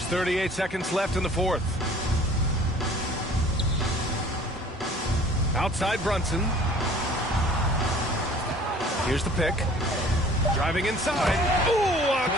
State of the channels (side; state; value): both; normal; correlation 0.50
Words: 38 seconds left in the fourth. Outside Brunson. Here's the pick. Driving inside. Ooh, a